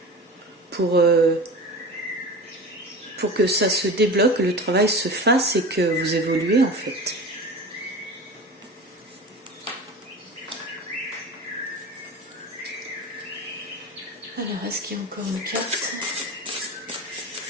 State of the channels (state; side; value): normal; both; correlation 0.32